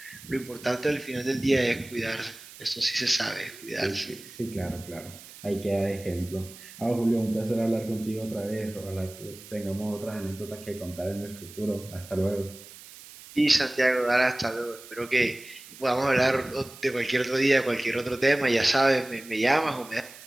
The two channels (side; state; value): right; noise; hiss, 18 dB below the sound